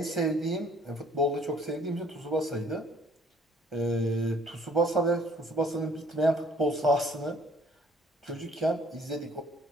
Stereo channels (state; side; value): normal; both; correlation 0.59